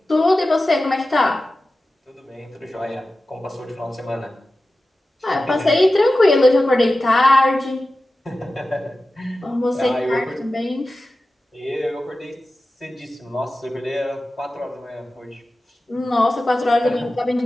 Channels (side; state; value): both; normal; correlation 0.94